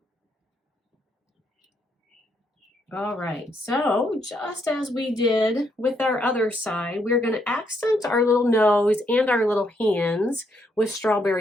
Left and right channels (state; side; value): normal; both; correlation 0.74